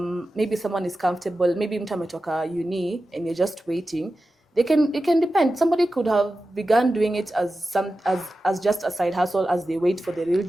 maybe someone is comfortable, maybe mtu ametoka uni and you're just waiting, it can depend. Somebody could have begun doing it as just a side hustle as they wait for the real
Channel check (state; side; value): normal; both; correlation 0.93